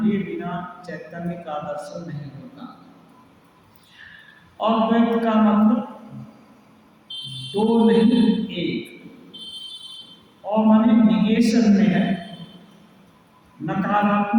बिना चैतन्य का दर्शन नहीं होता। अद्वैत का मतलब दो नहीं एक, और माने निगेशन में है,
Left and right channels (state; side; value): identical; both; correlation 1.00